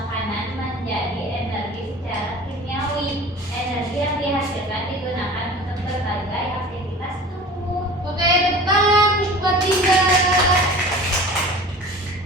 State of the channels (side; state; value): both; normal; correlation 0.40